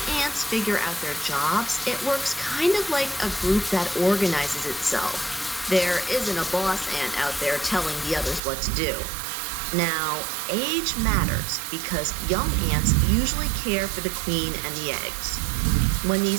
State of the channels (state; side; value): drops out; left; at 8.4 s